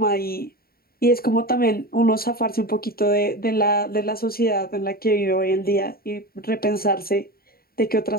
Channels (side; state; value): right; late; 0.44 ms